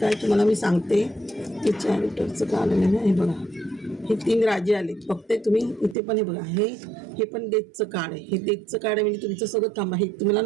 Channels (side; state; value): left; drops out; at 6.0 s